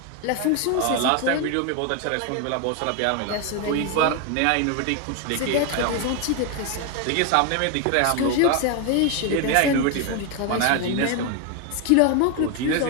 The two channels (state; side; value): different; both; correlation 0.01